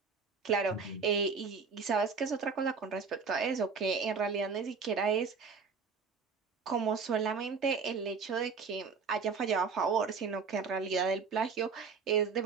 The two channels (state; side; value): quieter; left; 5.3 dB